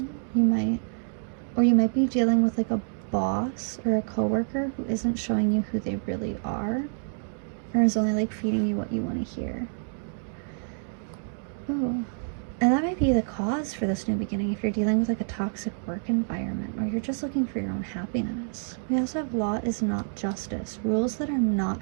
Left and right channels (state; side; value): silent; left; digital silence